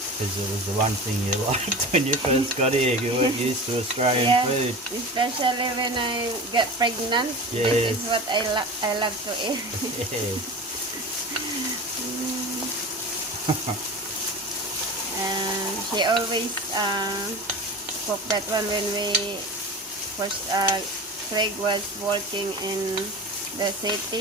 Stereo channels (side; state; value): both; normal; correlation 0.32